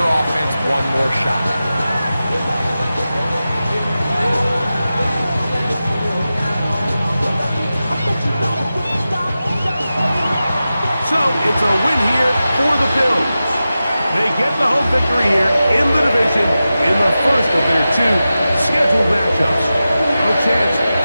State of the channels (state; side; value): inverted; both; correlation -0.93